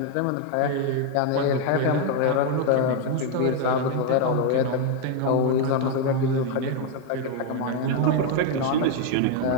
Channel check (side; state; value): both; different; correlation 0.01